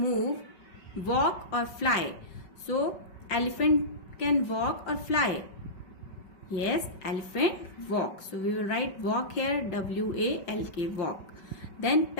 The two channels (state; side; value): late; right; 5.3 ms